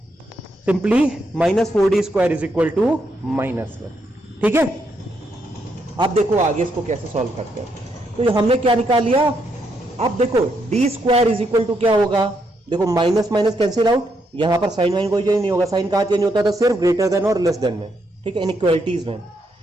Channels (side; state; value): both; normal; correlation 0.78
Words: simply minus 4d square is equal to minus 1। ठीक है, अब देखो आगे इसको कैसे सॉल्व करते हैं। तो हमने क्या निकाल लिया, अब देखो d square is equal to क्या होगा, देखो माइनस माइनस कैंसिल आउट, यहां पर साइन वाइन कोई चेंज नहीं होगा, साइन कहां चेंज होता था सिर्फ ग्रेटर देन और लेस देन में, ठीक है, इनइक्वालिटीज में,